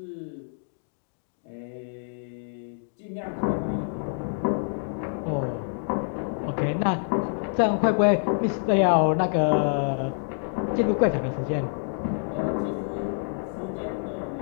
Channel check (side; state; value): right; silent; digital silence